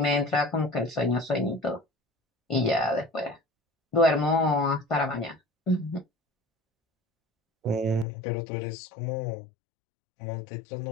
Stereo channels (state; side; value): drops out; right; at 8.1 s